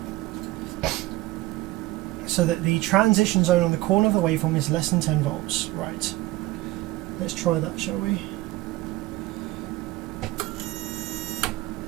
so that the transition zone on the corner of the waveform is less than 10 volts. Right, let's try that, shall we?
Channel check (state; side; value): quieter; left; 18.5 dB